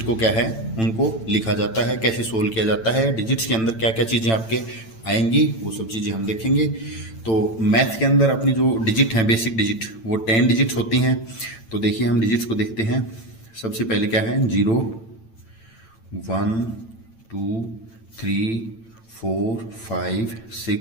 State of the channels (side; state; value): right; late; 8.9 ms